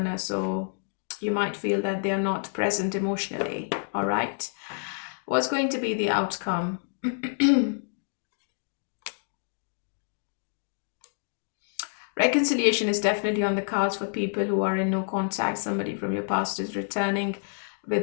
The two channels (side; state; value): right; silent; digital silence